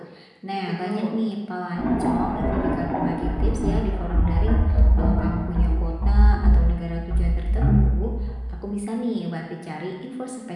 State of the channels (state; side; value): identical; both; correlation 1.00